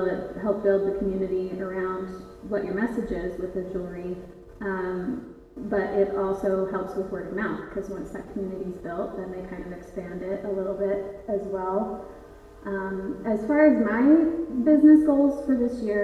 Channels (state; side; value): identical; both; correlation 1.00